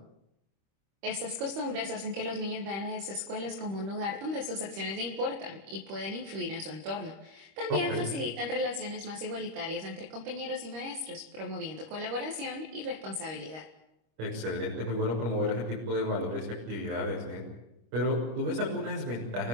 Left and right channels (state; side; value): late; left; 25 ms